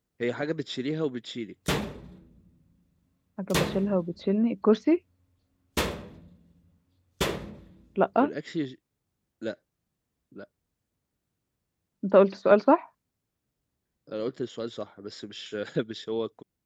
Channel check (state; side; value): identical; both; correlation 1.00